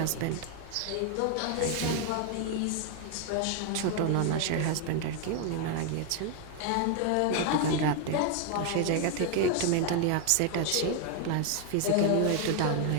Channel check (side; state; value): both; different; correlation 0.01